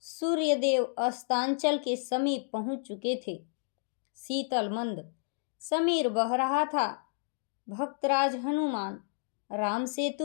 सूर्यदेव अस्तांचल के समीप पहुंच चुके थे। शीतल मंद समीर बह रहा था। भक्तराज हनुमान राम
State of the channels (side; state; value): right; silent; digital silence